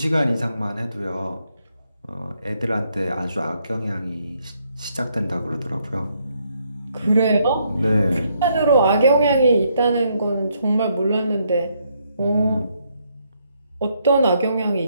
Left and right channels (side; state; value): both; inverted; correlation -0.73